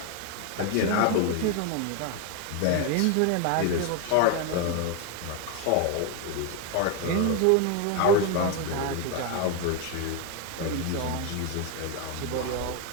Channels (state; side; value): different; both; correlation 0.02